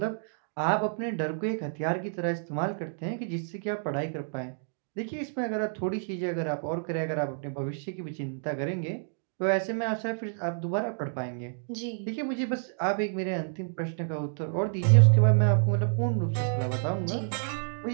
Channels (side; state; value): left; silent; digital silence